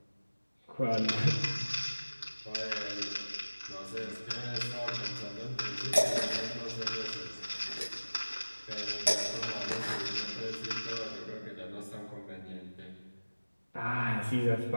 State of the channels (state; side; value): inverted; both; correlation -1.00